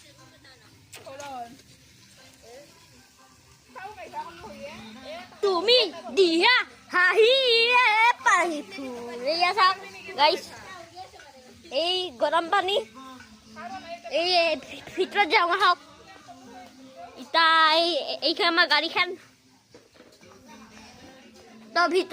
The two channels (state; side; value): identical; both; correlation 1.00